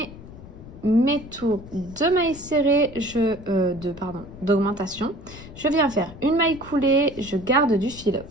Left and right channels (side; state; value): left; noise; rumble, 16 dB below the sound